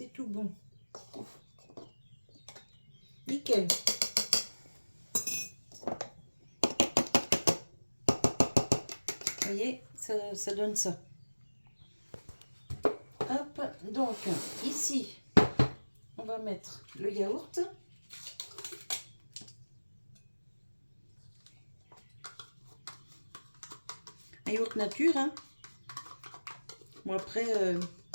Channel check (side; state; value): both; inverted; correlation -1.00